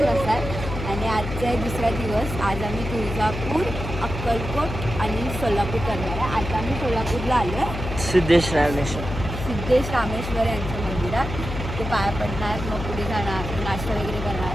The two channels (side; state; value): left; noise; hum, 6 dB below the sound